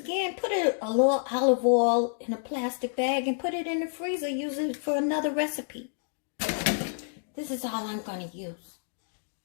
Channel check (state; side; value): silent; right; digital silence